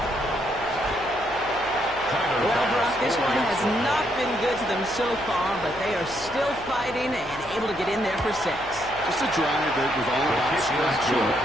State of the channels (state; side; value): noise; left; hum, 19 dB below the sound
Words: Tyler Well, Bass Brock, this one going has for it. not been good to them so far, but they are still fighting and able to get in there for 6. Just a drive that was all about kick is scratching